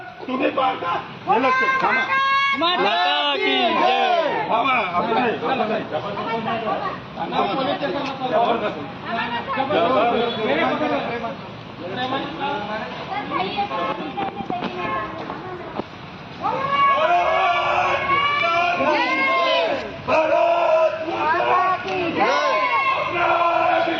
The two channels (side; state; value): both; identical; correlation 1.00